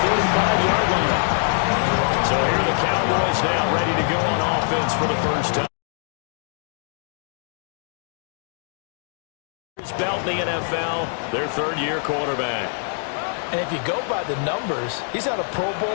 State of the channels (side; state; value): right; silent; 61 dB below the other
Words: 45-yard line. So here are the Cowboys now ready to go on offense for the first time. Belt in the NFL, their third-year quarterback. And if you go by the numbers, he's had a Pro